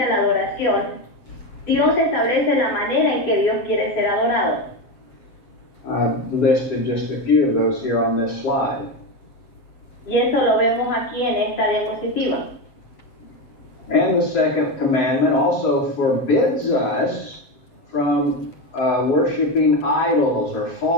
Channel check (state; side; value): late; right; 7.7 ms